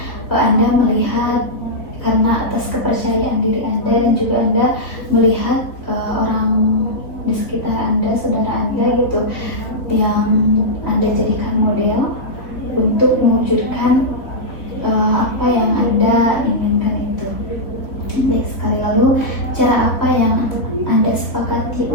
Anda melihat karena atas kepercayaan diri Anda, dan juga Anda melihat orang di sekitar Anda, saudara Anda gitu, yang Anda jadikan model untuk mewujudkan apa yang Anda inginkan itu. Baik sekali. Lalu cara apa yang Anda sepakati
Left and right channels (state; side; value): late; right; 3.9 ms